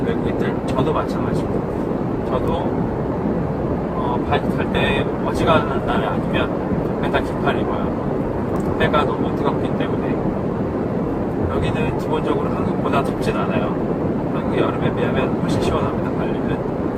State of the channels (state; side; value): identical; both; correlation 1.00